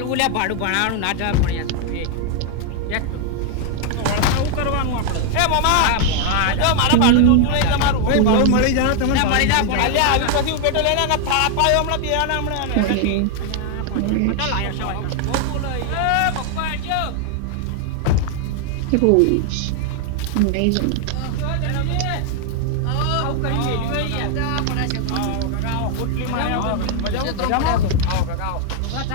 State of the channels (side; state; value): both; different; correlation 0.00